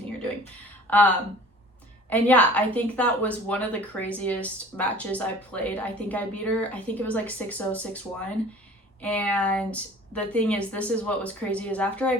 you're doing. And yeah, I think that was one of the craziest matches I played. I think I beat her. I think it was like 6-0, 6-1. And the thing is, this is what was crazy, is after I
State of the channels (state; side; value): normal; both; correlation 0.46